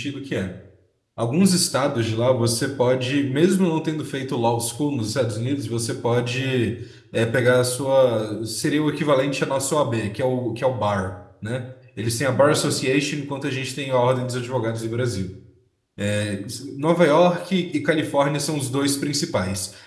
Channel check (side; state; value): both; identical; correlation 1.00